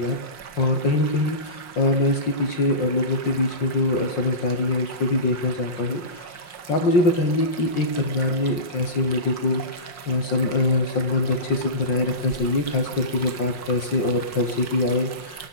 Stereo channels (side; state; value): right; late; 5.6 ms